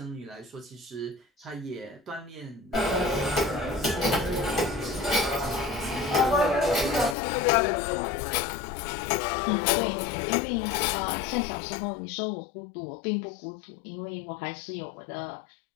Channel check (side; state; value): right; drops out; at 7.2 s